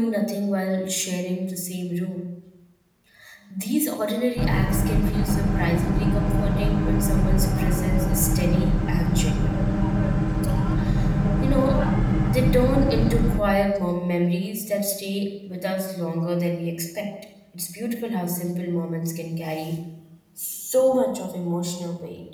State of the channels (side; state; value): both; identical; correlation 1.00